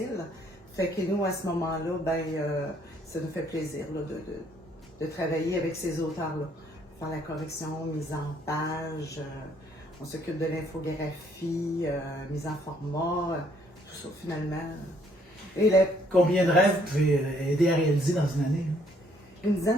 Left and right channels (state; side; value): normal; both; correlation 0.66